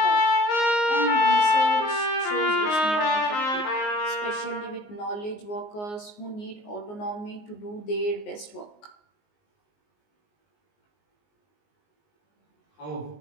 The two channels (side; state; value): right; late; 19 ms